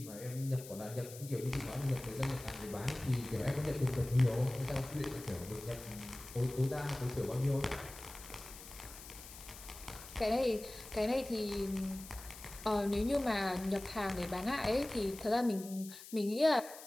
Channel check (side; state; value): left; noise; hiss, 15 dB below the sound